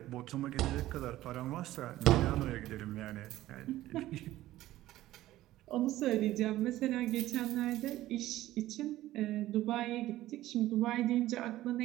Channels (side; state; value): left; quieter; 15.3 dB